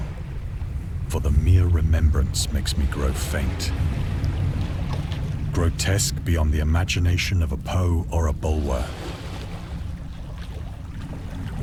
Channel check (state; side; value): identical; both; correlation 1.00